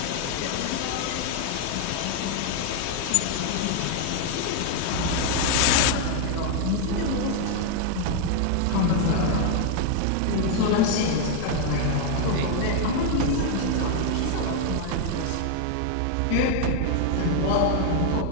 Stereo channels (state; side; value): different; both; correlation 0.00